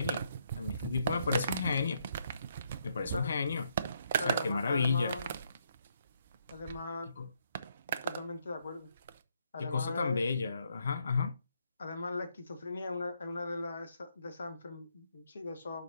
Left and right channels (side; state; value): both; inverted; correlation -0.74